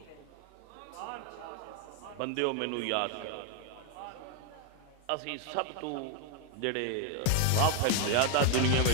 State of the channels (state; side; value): different; both; correlation 0.01